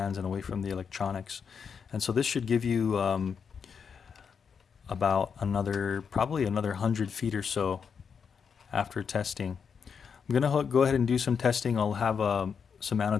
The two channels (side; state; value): right; quieter; 6.5 dB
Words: and away from the electronics. And so this should give you about probably another 100 feet or so after testing. I'm gonna go ahead and do some testing. I'll have some